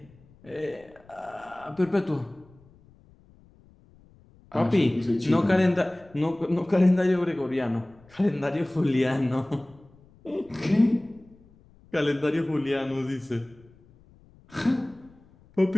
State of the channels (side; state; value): left; noise; rumble, 27 dB below the sound